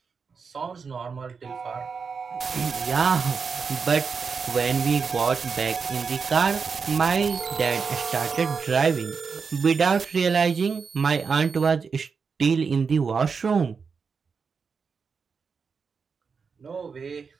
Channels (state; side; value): quieter; left; 5.5 dB